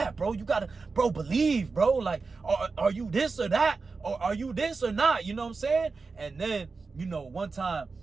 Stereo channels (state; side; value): quieter; left; 4.3 dB